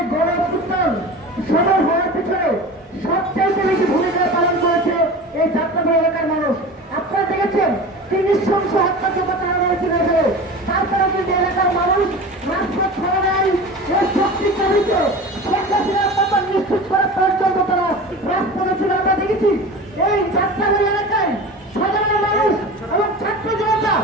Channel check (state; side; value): normal; both; correlation 0.33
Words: গণ অভ্যুত্থান সফল হওয়ার পিছনে সবচেয়ে বেশি ভূমিকা পালন করেছে এই যাত্রাবাড়ি এলাকার মানুষ। আপনারা দেখেছেন কি নৃশংস হত্যাযজ্ঞ চালানো হয়েছিল এখানে, তারপরে কিন্তু এলাকার মানুষ রাজপথ ছাড়া নাই। এই শক্তির চালিত নিশ্চিত করার পর্যন্ত তারা রাজপথে ছিল। আমরা দেখেছি এই যাত্রাবাড়ি এলাকায় সাধারণ মানুষ এবং ছাত্র জনতা